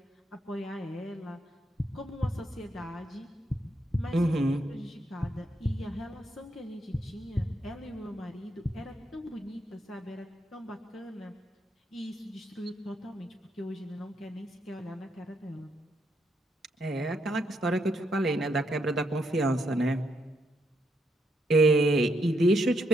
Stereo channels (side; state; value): both; normal; correlation 0.77